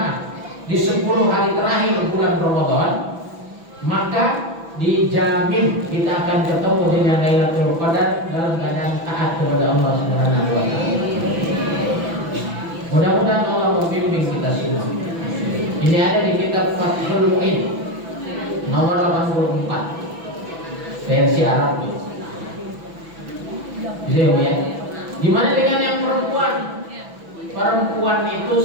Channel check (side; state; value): left; late; 6.0 ms